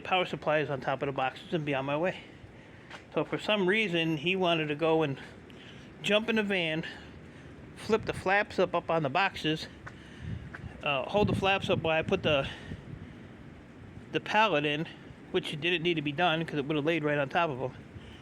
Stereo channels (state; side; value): identical; both; correlation 1.00